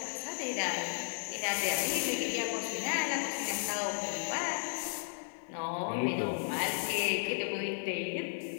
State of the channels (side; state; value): right; silent; digital silence